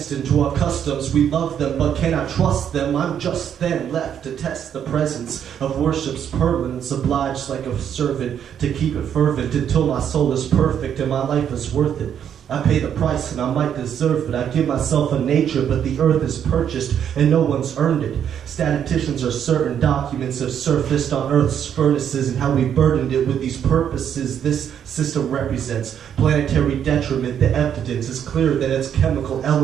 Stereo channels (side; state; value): left; quieter; 8.9 dB